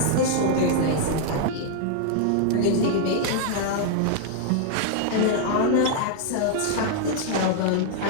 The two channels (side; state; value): both; different; correlation -0.01